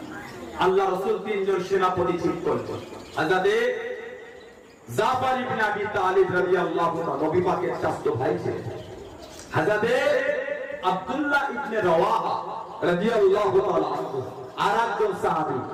আল্লাহ রাসূল 3 জন সেনাপতি ঠিক করলেন। হযরত জাফর ইবনে আবি তালিব রাদিয়াল্লাহু তাআলা নবী পাকের চাচা ভাই ছিলেন। হযরত আব্দুল্লাহ ইবনে রাওয়াহা রাদিয়াল্লাহু তাআলা আরেকজন সাহাবী।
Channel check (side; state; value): both; identical; correlation 1.00